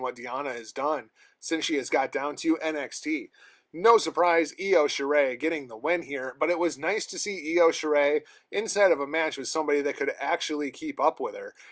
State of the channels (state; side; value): identical; both; correlation 1.00